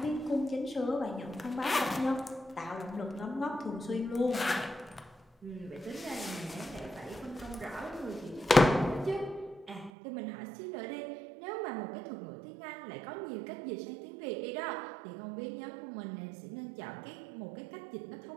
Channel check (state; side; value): drops out; left; at 9.9 s